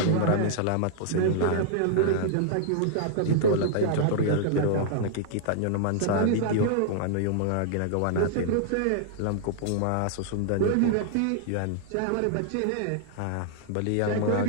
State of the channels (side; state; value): both; different; correlation -0.01